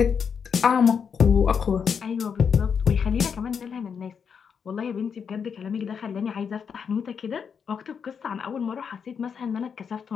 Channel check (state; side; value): quieter; right; 6.7 dB